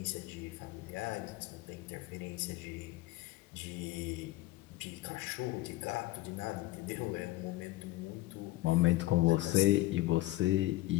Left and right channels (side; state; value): right; quieter; 17.2 dB